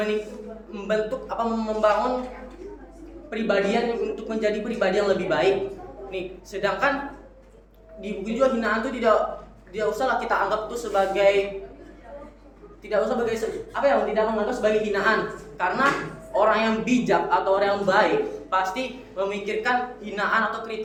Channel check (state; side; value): identical; both; correlation 1.00